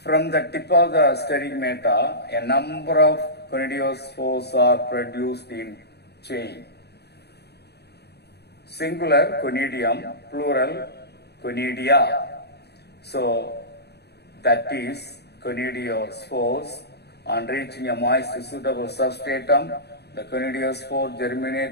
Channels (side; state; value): right; late; 0.48 ms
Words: From the tip of the sterigmata, a number of conidiophores are produced in chain. Singular conidium, plural conidia. So that is conidiospores. On reaching a moist suitable substratum, the conidiospore